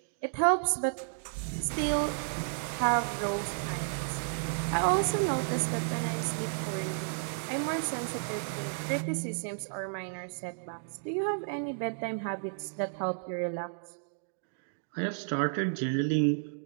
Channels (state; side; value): silent; left; digital silence